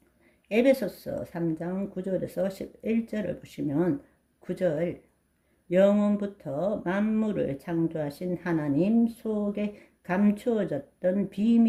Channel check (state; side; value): identical; both; correlation 1.00